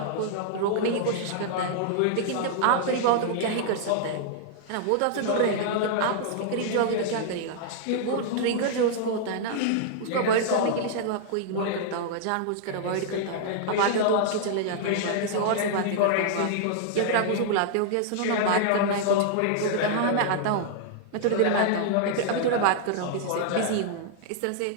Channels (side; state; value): both; different; correlation -0.01